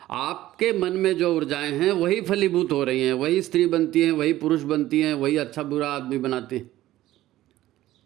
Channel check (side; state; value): left; quieter; 15.0 dB